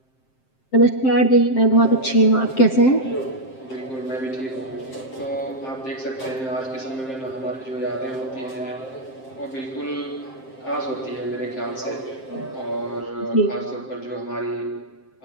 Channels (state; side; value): late; right; 7.6 ms